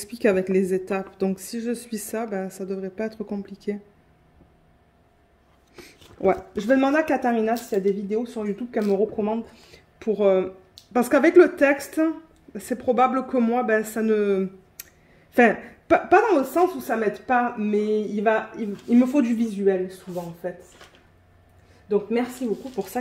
avec les étapes. Donc, si je suis ça, ben, ça devrait pas être compliqué. Ouais, je vais demander à Katharina s'il y a des vidéos sur YouTube qu'elle me recommande pour... Parce qu'avec le texte, c'est probable que moi, ben, ça ne... Enfin, pas dans le sens où ça m'aide pas, mais il me faut du visuel souvent, en fait. Donc, merci beaucoup pour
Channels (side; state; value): both; identical; correlation 1.00